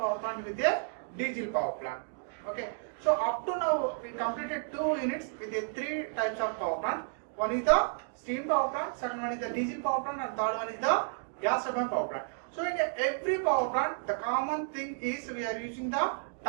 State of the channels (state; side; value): silent; left; digital silence